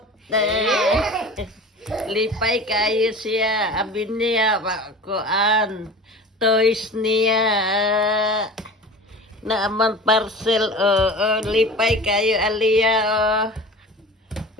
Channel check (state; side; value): normal; both; correlation 0.36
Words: Lipay kayo siya abi niya kuan toys niya na amang parcel lipay kayo Aliyah